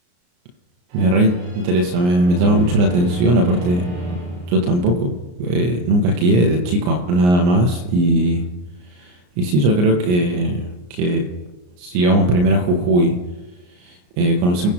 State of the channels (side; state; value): left; late; 34 ms